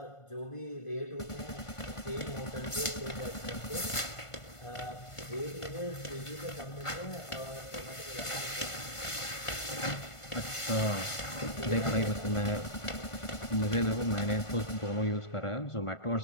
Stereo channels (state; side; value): late; right; 1.5 ms